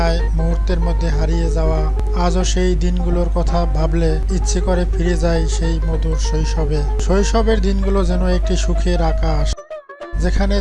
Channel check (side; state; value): both; identical; correlation 1.00